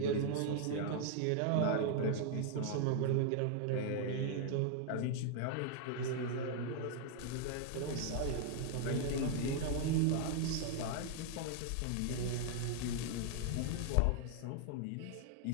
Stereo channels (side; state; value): both; different; correlation 0.00